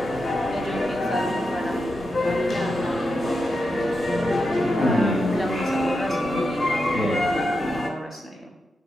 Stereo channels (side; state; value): both; normal; correlation 0.87